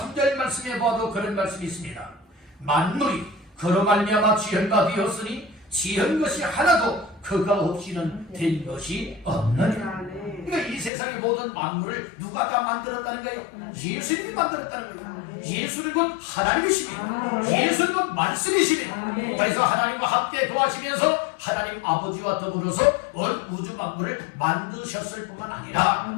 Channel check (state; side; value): drops out; right; at 10.9 s